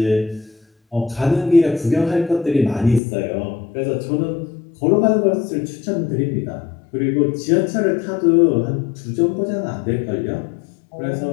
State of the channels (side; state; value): right; drops out; at 3.0 s